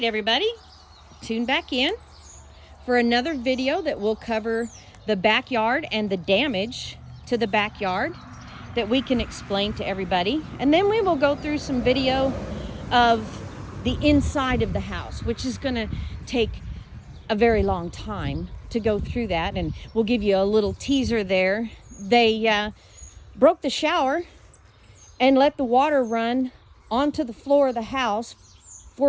everybody, tune back in for another video that will cover the backyard and the damage to the backyard that we can explain to everybody. And then we will go through some video of the inside of the house, which is going to take a very long time to go through that, and we'll give you a little teaser there. They broke the shower and let the water run onto the floor of the house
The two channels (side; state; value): both; identical; correlation 1.00